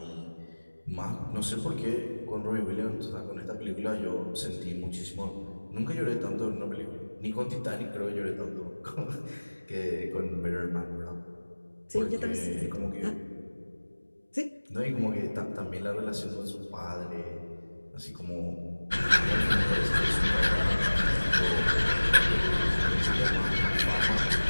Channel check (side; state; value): both; inverted; correlation -1.00